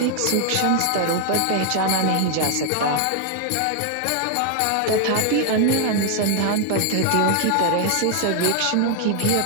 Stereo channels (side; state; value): both; different; correlation 0.00